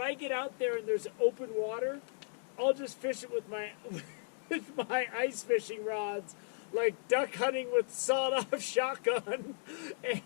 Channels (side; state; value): right; silent; 54 dB below the other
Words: get out there and there's open water, I'll just fish it with my ice fishing rods, like duck hunting with sawed-off shotgun.